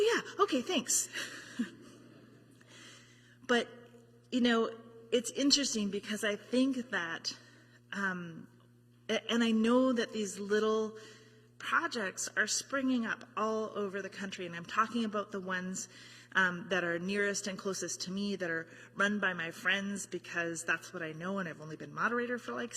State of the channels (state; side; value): identical; both; correlation 1.00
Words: yeah, okay, thanks. But, you know, it's interesting because I think that, and I know that these little projects are springing up all over the country, and I'm talking about the ones that are nearest and closest to me, that are run by my friends, because that's what I know, and I've only been moderator for like